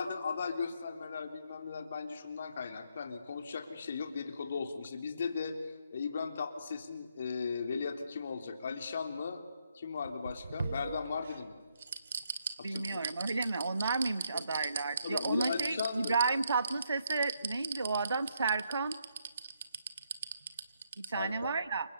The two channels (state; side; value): inverted; both; correlation -0.74